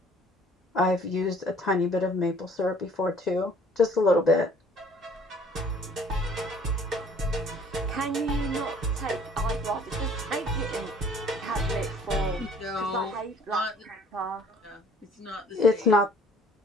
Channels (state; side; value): normal; both; correlation 0.55